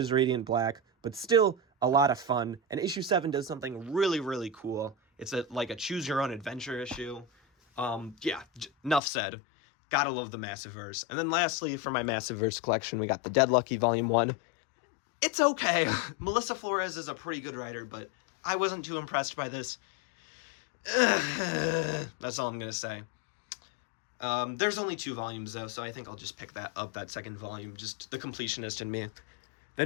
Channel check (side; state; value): right; drops out; at 9.0 s